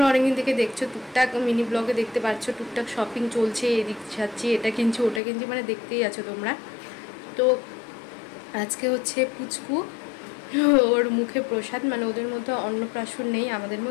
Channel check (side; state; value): right; drops out; at 5.2 s